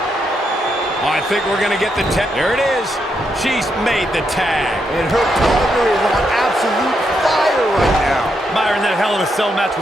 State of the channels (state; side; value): normal; both; correlation 0.80